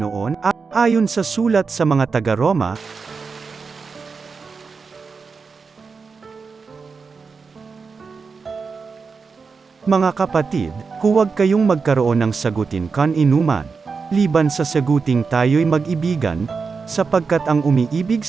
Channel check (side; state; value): left; quieter; 5.0 dB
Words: ayon sa sulat sa mga taga-Roma, mga kapatid, huwag kayong magkaroon ng sagutin kan-inuman, liban sa saguting tayo'y mag-ibigan, sapagkat ang umiibig